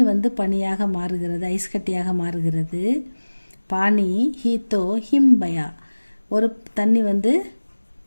வந்து பனியாக மாறுகிறது, ஐஸ் கட்டியாக மாறுகிறது. பாணி ஹி தோ ஹிம் பயா, ஒரு தண்ணி வந்து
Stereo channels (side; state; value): both; inverted; correlation -1.00